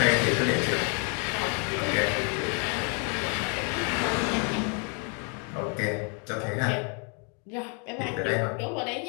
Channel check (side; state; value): right; quieter; 38.7 dB